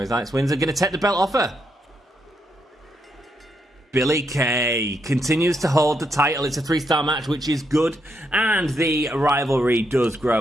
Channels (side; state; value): both; normal; correlation 0.79